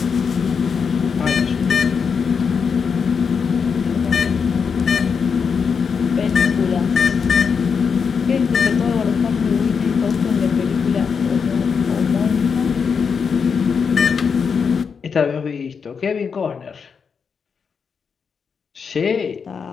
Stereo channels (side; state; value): right; quieter; 6.0 dB